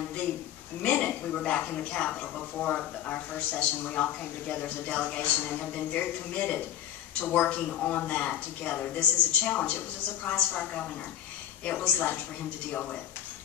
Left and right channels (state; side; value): quieter; right; 11.1 dB